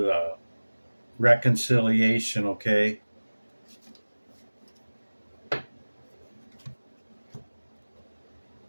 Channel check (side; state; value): both; inverted; correlation -1.00